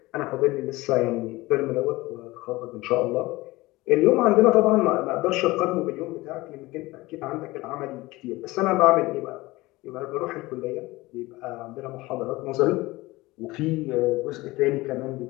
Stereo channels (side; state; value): right; quieter; 20.3 dB